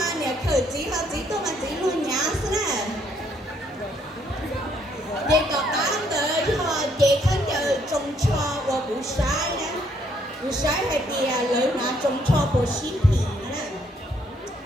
nè khởi chỉ tôi mà chỉ luôn nhá thế nè để có bán tới họ để khán giả trồng cho và bù sai nè bù sai hay bìa lời mà trồng cho bù xí phì nè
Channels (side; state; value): both; normal; correlation 0.69